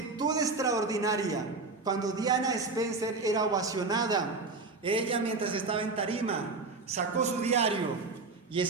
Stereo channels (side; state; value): left; quieter; 3.8 dB